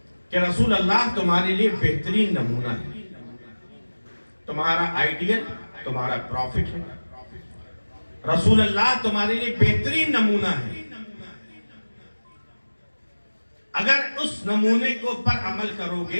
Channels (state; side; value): inverted; both; correlation -1.00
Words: کہ رسول اللہ تمہارے لیے بہترین نمونہ ہے تمہارا آئیڈیل تمہارا پروفٹ ہے رسول اللہ تمہارے لیے بہترین نمونہ ہے اگر اس نمونے کو پر عمل کرو